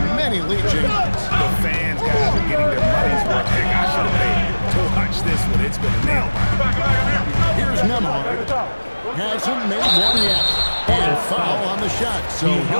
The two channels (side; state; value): both; inverted; correlation -1.00